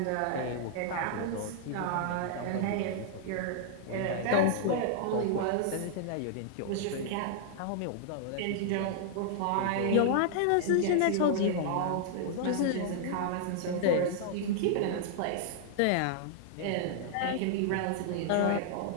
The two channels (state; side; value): different; both; correlation -0.01